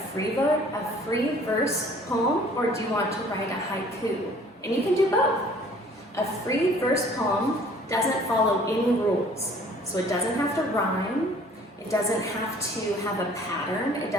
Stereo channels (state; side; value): normal; both; correlation 0.54